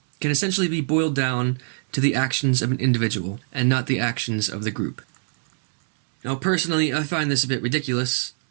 can essentially be boiled down to the actions of an individual and not the actions of the group. Now, personally, I find this a bit ridiculous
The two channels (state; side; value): silent; left; digital silence